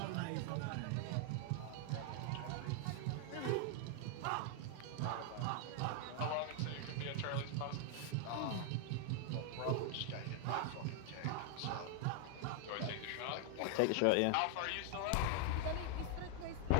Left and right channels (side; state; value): both; different; correlation 0.00